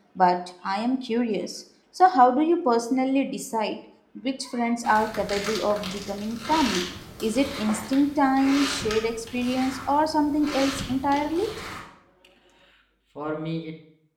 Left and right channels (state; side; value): identical; both; correlation 1.00